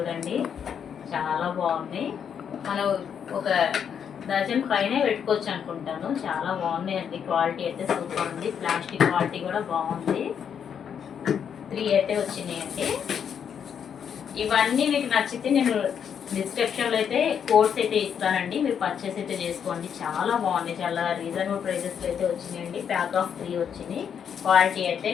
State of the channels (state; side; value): quieter; right; 7.8 dB